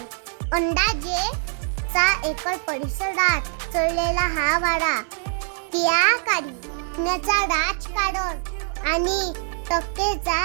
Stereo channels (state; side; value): silent; left; 57 dB below the other